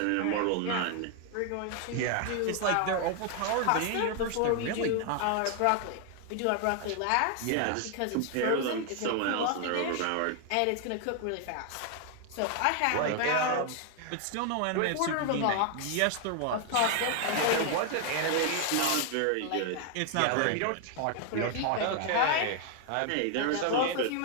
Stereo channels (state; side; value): different; both; correlation 0.00